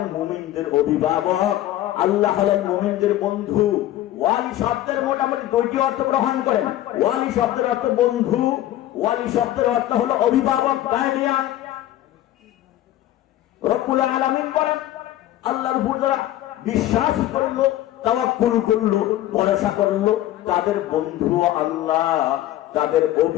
মুমিনদের অভিভাবক, আল্লাহ হলেন মুমিনদের বন্ধু। ওয়ালি শব্দের মোটামুটি দুইটি অর্থ গ্রহণ করেন। ওয়ালি শব্দের অর্থ বন্ধু, ওয়ালি শব্দের অর্থ হলো অভিভাবক, গার্ডিয়ান। রব্বুল আলামিন বলেন আল্লাহর উপর যারা বিশ্বাস করলো, তাওয়াক্কুল করলো, ভরসা করলো, তাদের বন্ধু আল্লাহ, তাদের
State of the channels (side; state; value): right; quieter; 13.8 dB